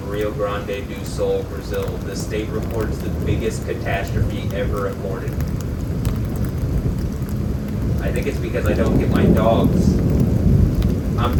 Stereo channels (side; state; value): both; identical; correlation 1.00